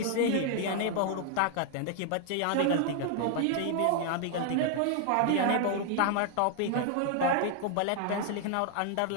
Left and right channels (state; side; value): different; both; correlation 0.00